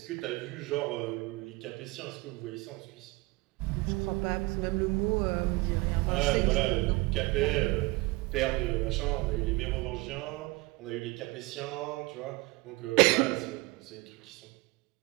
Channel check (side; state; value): left; quieter; 23.3 dB